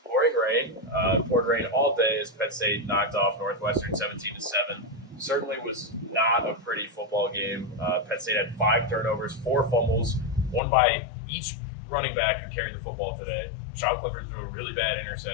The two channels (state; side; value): drops out; right; at 10.6 s